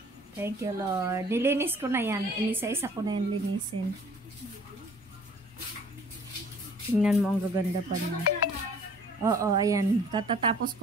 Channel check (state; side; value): normal; both; correlation 0.53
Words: Thank you, Lord. Nilinis ko na yan. Inisa-isa ko na yan linisin. Tingnan mo, ang gaganda pa niya. Oo, ayan. Katatapos